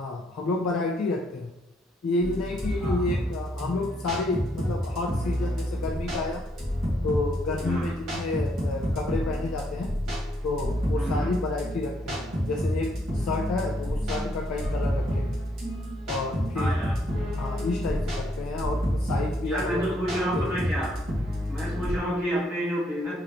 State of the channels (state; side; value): normal; both; correlation 0.72